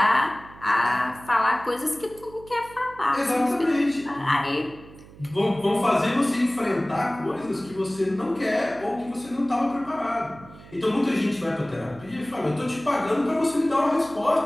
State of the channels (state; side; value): noise; right; hum, 20 dB below the sound